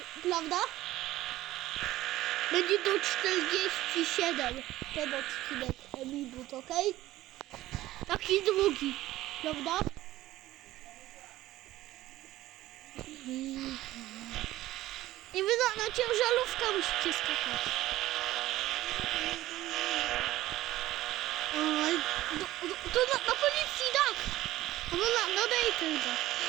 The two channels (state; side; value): quieter; left; 15.8 dB